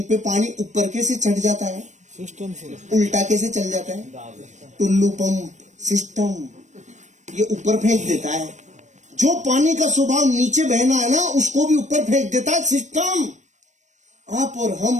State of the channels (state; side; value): late; left; 0.35 ms